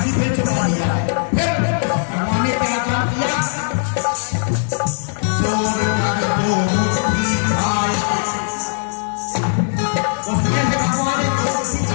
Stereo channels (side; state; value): right; silent; 63 dB below the other